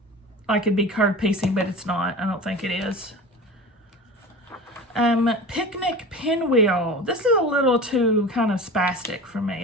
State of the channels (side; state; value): both; normal; correlation 0.34